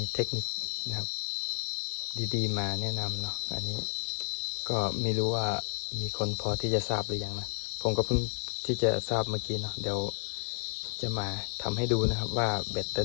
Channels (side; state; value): right; silent; 57 dB below the other